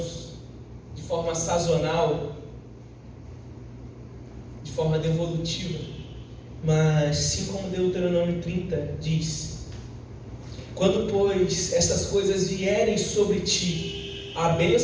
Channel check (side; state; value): both; identical; correlation 1.00